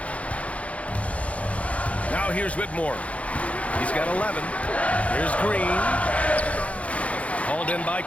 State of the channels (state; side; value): late; right; 0.065 ms